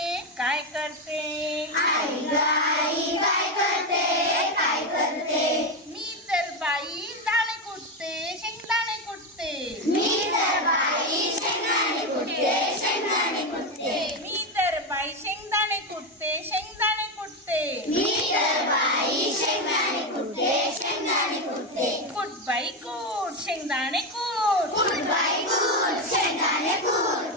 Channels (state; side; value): normal; both; correlation 0.11